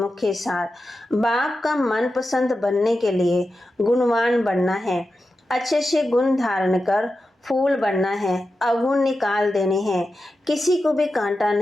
सार, बाप का मनपसंद बनने के लिए गुणवान बनना है। अच्छे से गुण धारण कर फूल बनना है। अवगुण निकाल देने हैं। किसी को भी कांटा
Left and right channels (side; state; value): both; normal; correlation 0.91